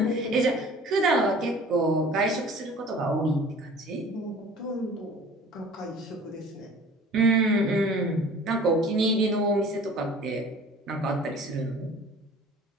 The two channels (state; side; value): normal; both; correlation 0.46